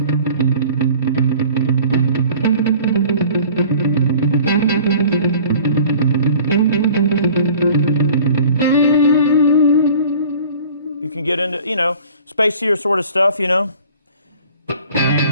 You can get into, spacier sort of stuff, You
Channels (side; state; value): both; inverted; correlation -0.48